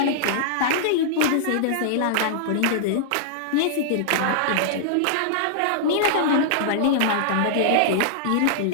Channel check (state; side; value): different; both; correlation -0.01